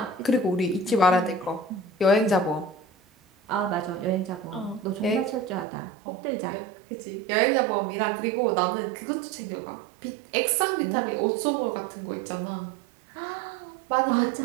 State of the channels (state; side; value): drops out; left; at 5.7 s